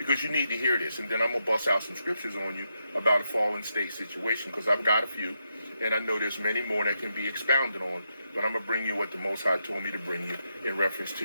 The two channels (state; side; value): inverted; both; correlation -0.83